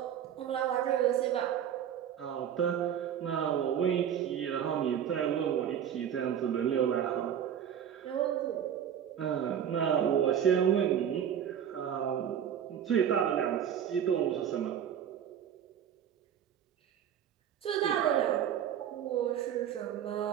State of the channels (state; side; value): quieter; left; 9.2 dB